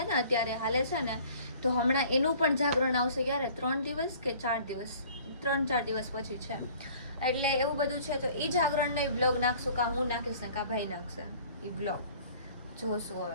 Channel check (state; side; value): inverted; both; correlation -0.51